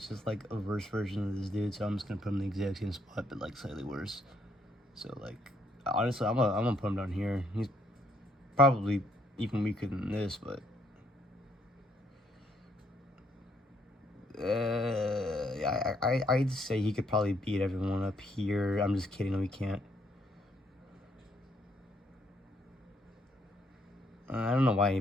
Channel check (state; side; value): normal; both; correlation 0.70